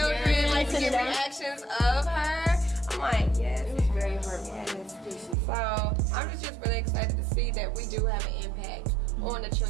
and get reactions of her. I'm like, yes, it was very heartwarming. So I'm just really excited to see that we do have an impact on the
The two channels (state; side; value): drops out; left; at 5.4 s